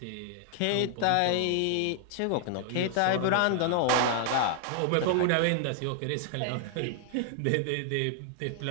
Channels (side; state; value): both; different; correlation 0.00